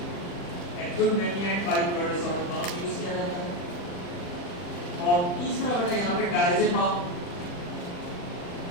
Acute mania and bipolar disorder दोनों यूज किया जाता है। और तीसरा बेटा यहाँ पे डायजेपाम,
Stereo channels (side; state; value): right; late; 40 ms